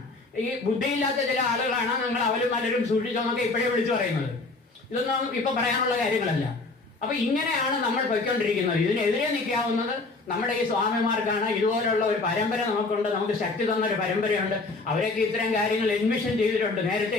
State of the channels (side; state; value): right; quieter; 3.5 dB